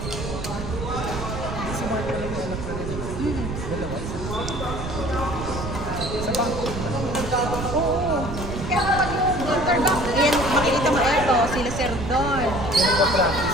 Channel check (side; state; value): right; noise; rumble, 6 dB below the sound